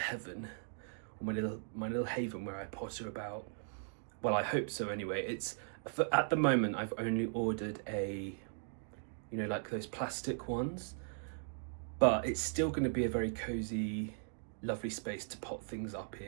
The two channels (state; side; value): silent; left; digital silence